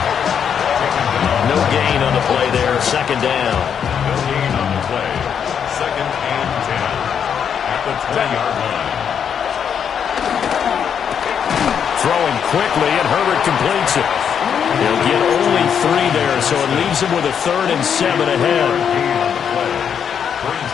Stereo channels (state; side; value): quieter; right; 7.8 dB